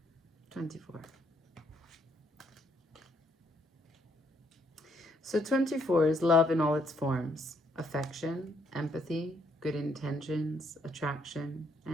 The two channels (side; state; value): both; normal; correlation 0.71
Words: So 24 is love in all its forms: affection, empathy, good intentions, attraction,